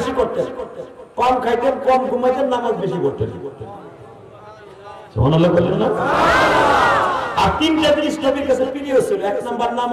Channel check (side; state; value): both; identical; correlation 1.00